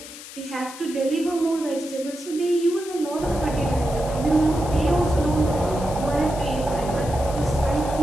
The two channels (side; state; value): left; noise; hiss, 14 dB below the sound